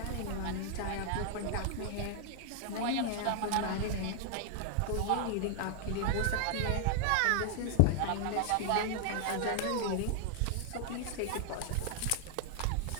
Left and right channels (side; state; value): both; different; correlation 0.00